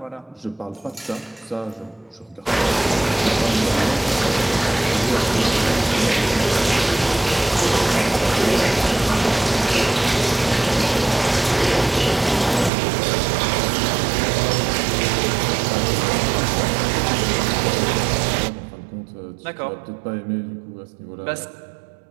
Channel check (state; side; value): drops out; left; at 12.7 s